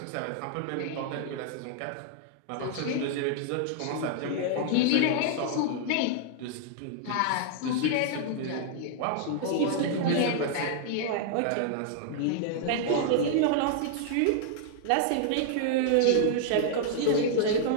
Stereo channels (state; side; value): different; both; correlation -0.01